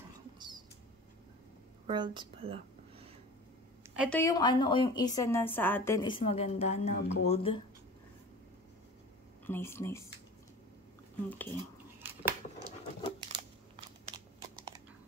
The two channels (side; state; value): both; normal; correlation 0.38